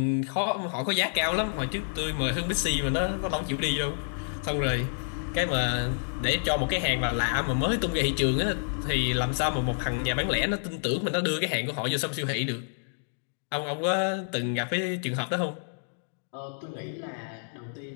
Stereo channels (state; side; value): silent; right; digital silence